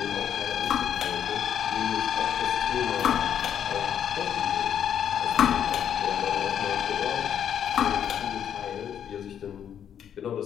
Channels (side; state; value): right; quieter; 9.1 dB